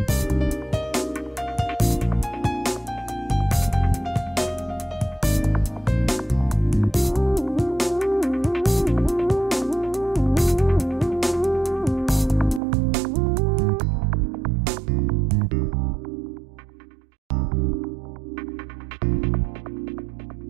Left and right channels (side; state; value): left; drops out; at 12.6 s